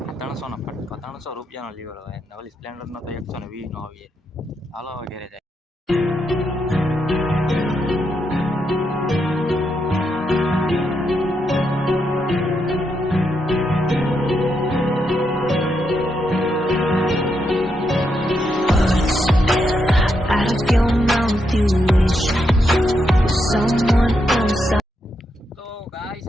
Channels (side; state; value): both; normal; correlation 0.81